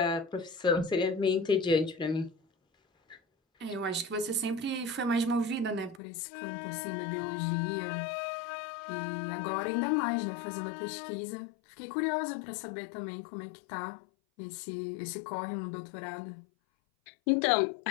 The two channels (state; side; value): drops out; right; at 6.0 s